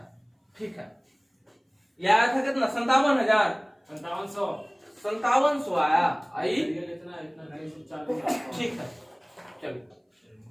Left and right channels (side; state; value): both; identical; correlation 1.00